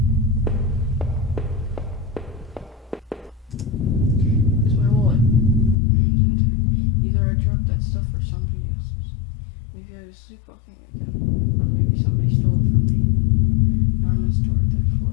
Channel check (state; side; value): drops out; right; at 5.8 s